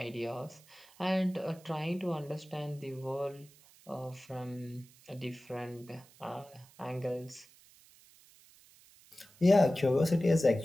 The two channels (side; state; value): right; noise; hiss, 26 dB below the sound